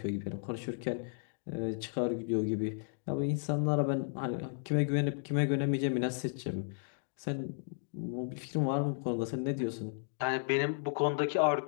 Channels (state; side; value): silent; right; digital silence